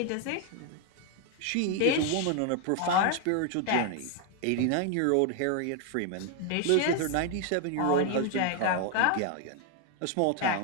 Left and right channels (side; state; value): both; different; correlation 0.01